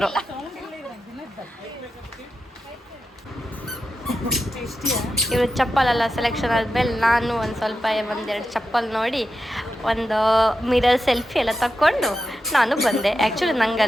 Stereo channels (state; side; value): normal; both; correlation 0.89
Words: ಇವರು ಚಪ್ಪಲೆಲ್ಲ ಸೆಲೆಕ್ಷನ್ ಆದಮೇಲೆ ನಾನು ಒಂದು ಸ್ವಲ್ಪ 1-2 ಚಪ್ಪಲ್ ನೋಡಿ ಒಂದು ಮಿರರ್ ಸೆಲ್ಫಿ ಎಲ್ಲ ತಕ್ಕೊಂಡು ನಾನು ಬಂದೆ. ಆ್ಯಕ್ಚುಲಿ